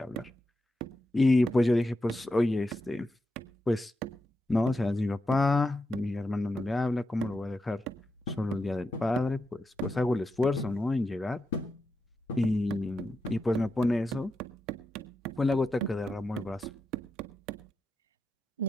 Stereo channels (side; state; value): both; normal; correlation 0.87